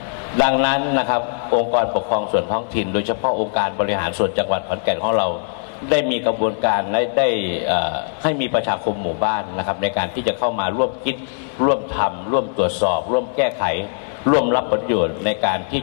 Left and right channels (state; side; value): silent; right; digital silence